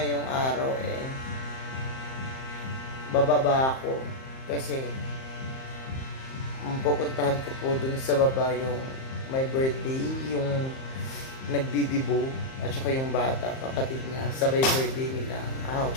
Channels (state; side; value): late; right; 38 ms